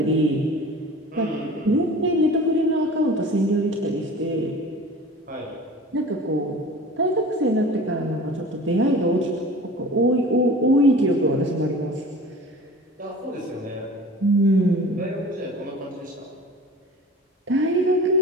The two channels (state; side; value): normal; both; correlation 0.40